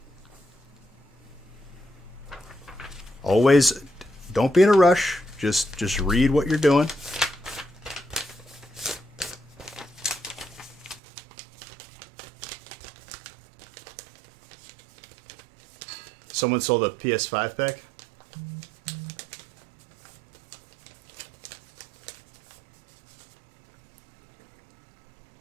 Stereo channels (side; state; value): left; drops out; at 11.0 s